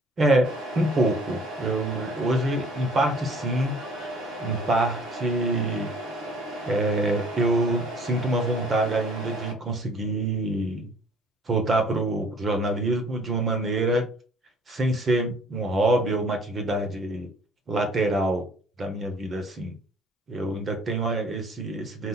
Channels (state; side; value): normal; both; correlation 0.54